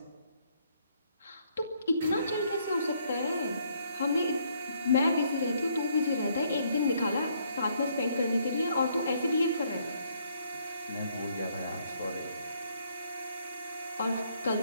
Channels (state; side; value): inverted; both; correlation -0.69